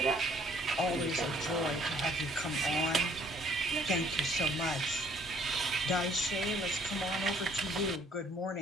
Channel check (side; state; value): both; normal; correlation 0.60